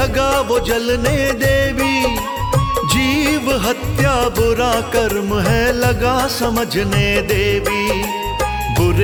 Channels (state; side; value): identical; both; correlation 1.00